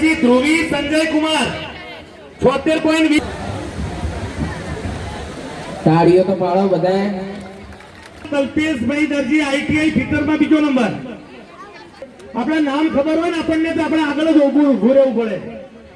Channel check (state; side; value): identical; both; correlation 1.00